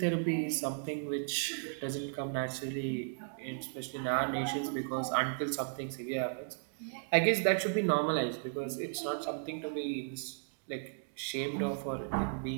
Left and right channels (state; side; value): silent; left; digital silence